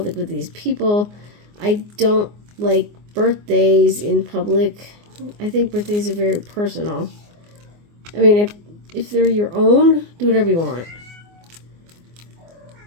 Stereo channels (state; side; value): late; left; 24 ms